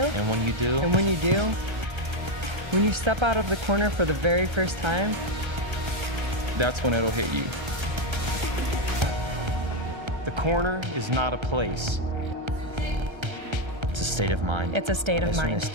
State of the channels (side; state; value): left; late; 1.3 ms